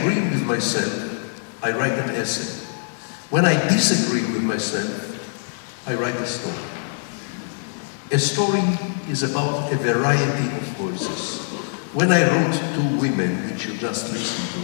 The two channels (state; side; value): silent; right; 63 dB below the other